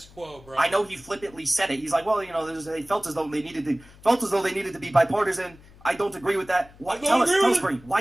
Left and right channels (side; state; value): left; noise; hum, 24 dB below the sound